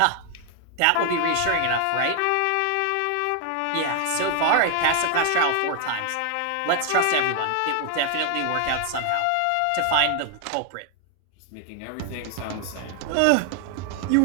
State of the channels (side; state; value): both; different; correlation 0.00